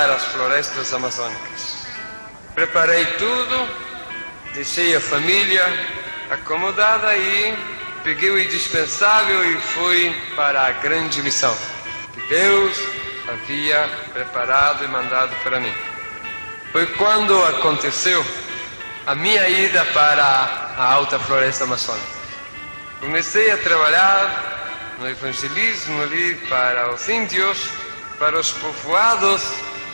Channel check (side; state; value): both; inverted; correlation -1.00